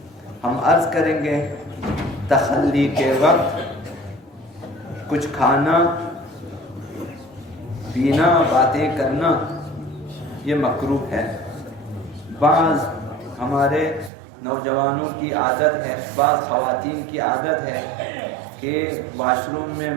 ہم عرض کریں گے۔ تخلی کے وقت کچھ کھانا پینا باتیں کرنا یہ مکروہ ہے۔ بعض ہمارے نوجوانوں کی عادت ہے، بعض خواتین کی عادت ہے کہ واش روم میں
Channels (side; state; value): left; drops out; at 14.1 s